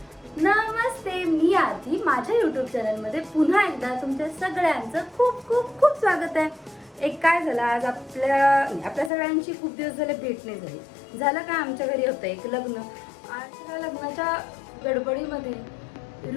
नमस्ते, मी आधी माझ्या यूट्यूब चॅनलमध्ये पुन्हा एकदा तुमच्या सगळ्यांचं खूप खूप खूप स्वागत आहे. एक काय झालं, आज आपल्या सगळ्यांची खूप दिवस झाले भेट नाही झाली. झालं काय, आमच्या घरी होतं एक लग्न. आज त्या लग्नाच्या गडबडीमध्ये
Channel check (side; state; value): right; drops out; at 9.1 s